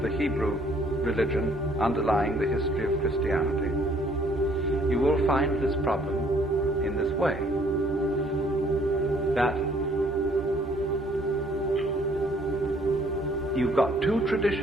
the Hebrew religion underlying the history of Christianity, you will find this problem in this way, that you've got two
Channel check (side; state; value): both; normal; correlation 0.61